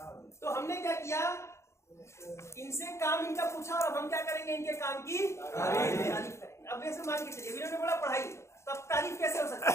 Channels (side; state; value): right; late; 0.13 ms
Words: तो हमने क्या किया, इनसे काम इनका पूछा और हम क्या करेंगे, इनके काम की तारीफ करेंगे। अब जैसे मान के चलिए, ने बोला पढ़ाई, तब तारीफ कैसे हो सकती